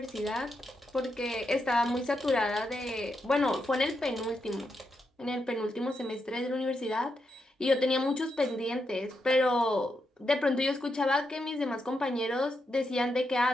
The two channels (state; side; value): normal; both; correlation 0.84